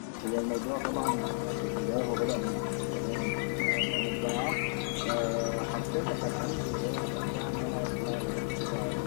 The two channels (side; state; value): right; silent; digital silence